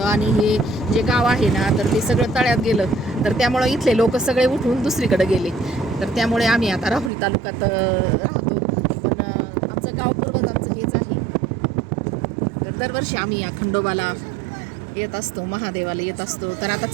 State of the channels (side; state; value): left; drops out; at 7.1 s